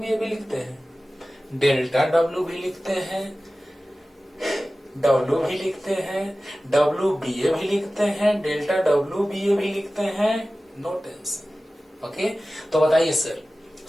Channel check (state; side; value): normal; both; correlation 0.96